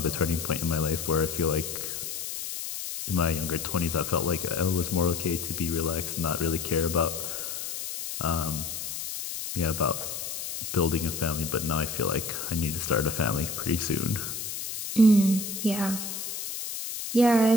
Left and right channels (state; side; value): noise; left; hiss, 6 dB below the sound